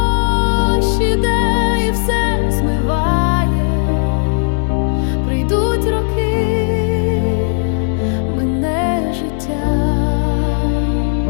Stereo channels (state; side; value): silent; right; digital silence